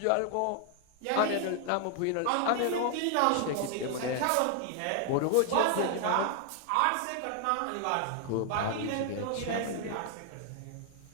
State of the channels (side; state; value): both; different; correlation 0.00